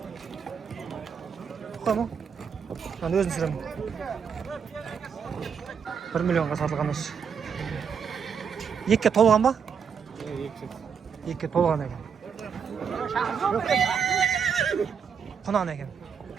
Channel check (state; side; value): quieter; left; 6.8 dB